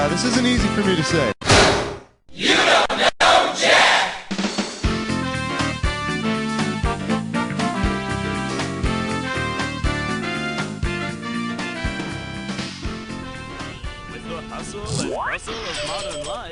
this isn't easy for me to say. You don't know Jack!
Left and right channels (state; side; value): identical; both; correlation 1.00